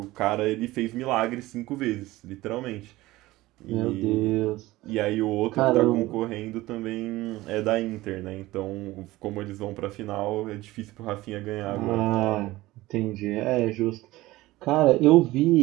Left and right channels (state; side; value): quieter; left; 18.1 dB